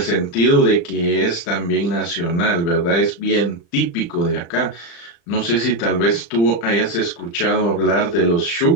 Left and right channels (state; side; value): late; right; 35 ms